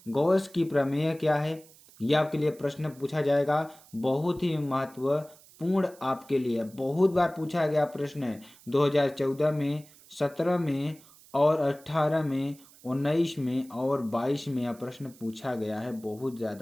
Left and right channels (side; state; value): right; noise; hiss, 24 dB below the sound